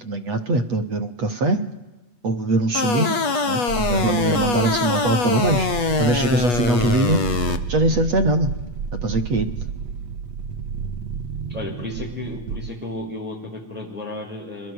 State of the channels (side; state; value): left; late; 8.3 ms